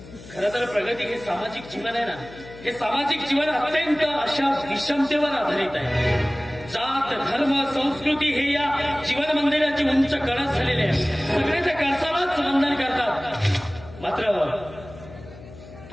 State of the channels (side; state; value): left; noise; hum, 17 dB below the sound